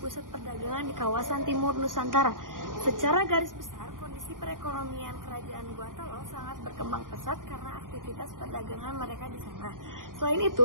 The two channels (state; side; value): late; left; 0.89 ms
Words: perdagangan di kawasan timur Nusantara. Secara garis besar, kondisi perekonomian Kerajaan Goa Talo sangat berkembang pesat karena aktivitas perdagangan mereka di sana. Selain